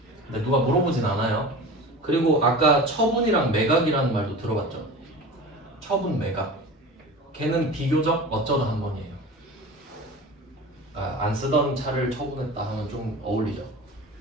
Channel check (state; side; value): normal; both; correlation 0.34